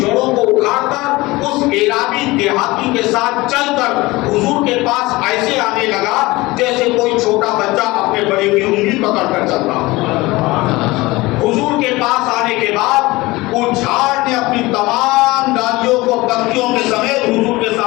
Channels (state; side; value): quieter; right; 21.0 dB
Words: کو اکھاڑ کر اس عرابی دیہاتی کے ساتھ چل کر حضور کے پاس ایسے آنے لگا جیسے کوئی چھوٹا بچہ اپنے بڑے کی انگلی پکڑ کر چلتا۔ حضور کے پاس آنے کے بعد وہ جھاڑ نے اپنی تمام ڈالیوں کو پتیوں کے سمیت حضور کے